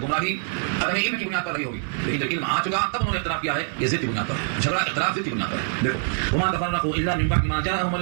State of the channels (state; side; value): silent; left; 62 dB below the other